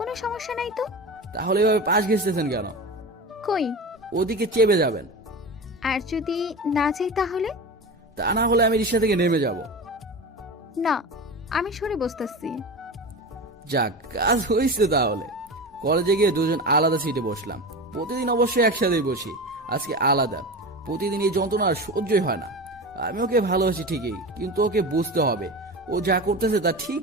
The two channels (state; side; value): normal; both; correlation 0.27